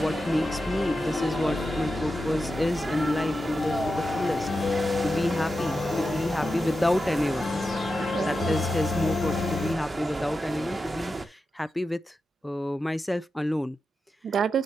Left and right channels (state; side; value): normal; both; correlation 0.90